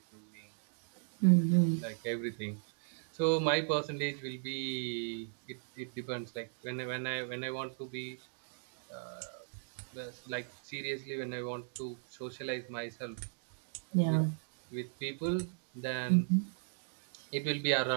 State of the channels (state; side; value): silent; left; digital silence